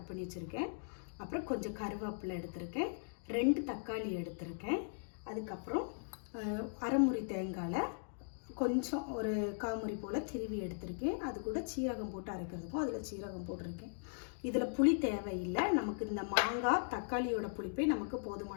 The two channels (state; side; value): silent; right; digital silence